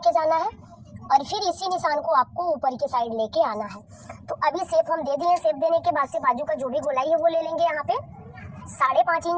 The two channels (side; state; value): both; identical; correlation 1.00